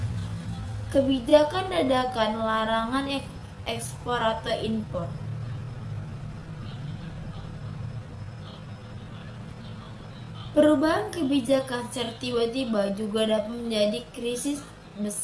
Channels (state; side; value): identical; both; correlation 1.00